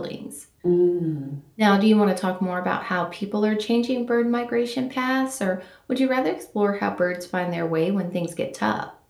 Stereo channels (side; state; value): both; identical; correlation 1.00